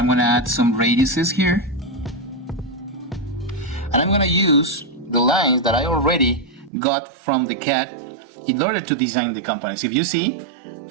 going to add some radiuses here, and I'm going to use the lines that I already got from the CAD in order to design the components. If you see,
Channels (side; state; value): left; drops out; at 6.7 s